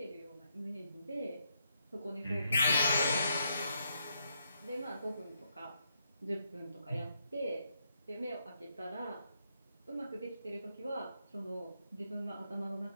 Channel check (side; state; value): both; inverted; correlation -0.79